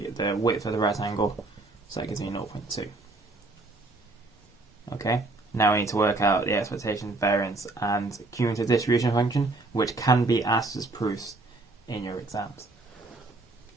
the width of the rectangle, so that gives me 0.2. Okay, now we need to work out the expectation, variance, and cumulative distribution function, which can be asked as proofs in your exams.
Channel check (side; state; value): left; quieter; 3.1 dB